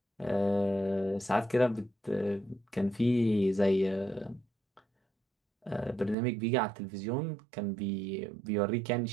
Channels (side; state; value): left; drops out; at 6.2 s